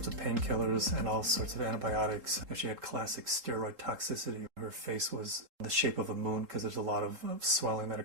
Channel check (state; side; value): late; left; 3.8 ms